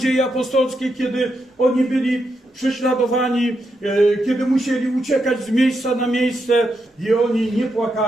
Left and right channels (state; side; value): normal; both; correlation 0.83